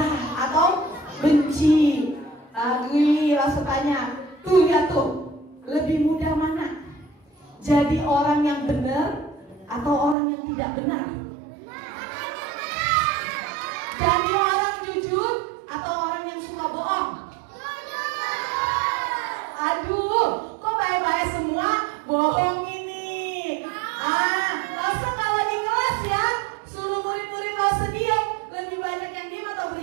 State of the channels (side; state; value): left; drops out; at 10.2 s